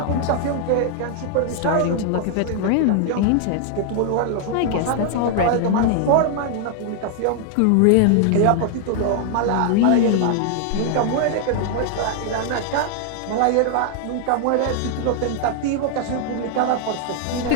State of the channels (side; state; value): both; different; correlation 0.00